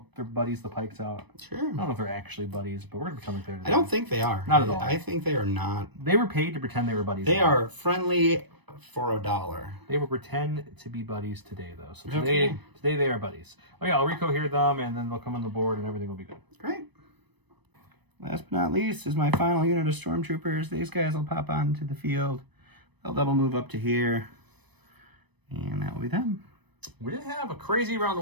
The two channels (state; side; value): late; left; 0.99 ms